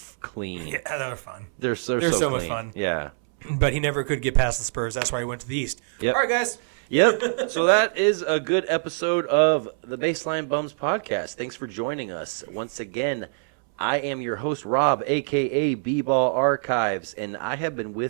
clean. Yeah, that was fun. They're so so clean. much fun. Yeah. But he never could get past the Spurs. That's why he went to the East. Yep. All right, guys. Yep. So that is a good episode of the Baseline Bums podcast. Thanks for joining us. Once again, I am your host, Rob, a.k.a. B-Ball Archives, and I have been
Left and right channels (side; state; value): left; silent; 62 dB below the other